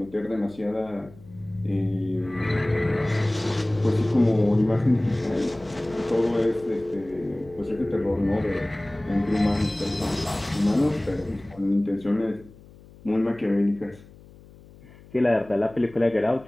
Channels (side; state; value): left; noise; hum, 22 dB below the sound